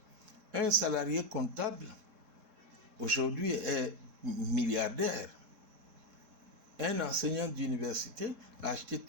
Un salarié comptable, aujourd'hui, est milliardaire. Un enseignant d'université a acheté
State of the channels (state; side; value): late; left; 3.7 ms